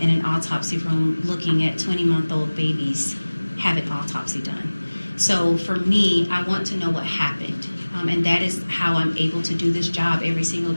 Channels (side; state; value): both; inverted; correlation -1.00